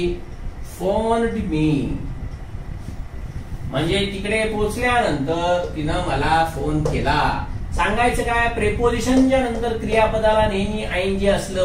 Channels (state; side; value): identical; both; correlation 1.00